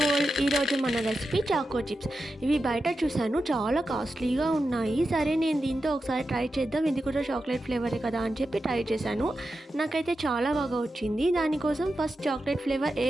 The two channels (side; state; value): both; normal; correlation 0.90